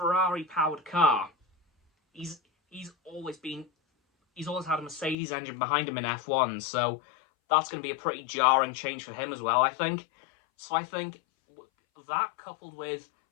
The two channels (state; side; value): drops out; right; at 5.2 s